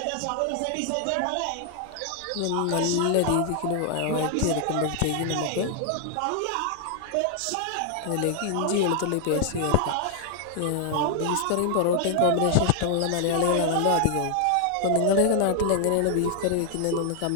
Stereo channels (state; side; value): different; both; correlation 0.00